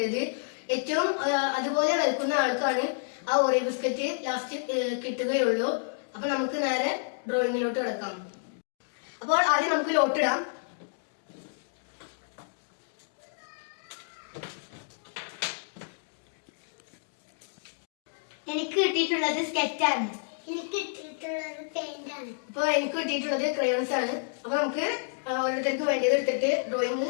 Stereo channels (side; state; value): right; silent; digital silence